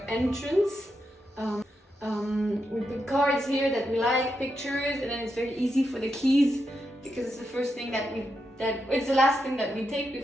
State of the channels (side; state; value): both; normal; correlation 0.84